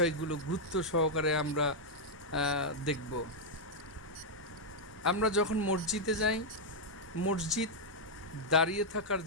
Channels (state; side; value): normal; both; correlation -0.04